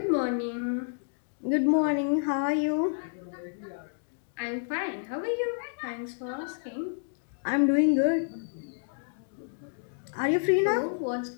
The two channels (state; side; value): silent; right; digital silence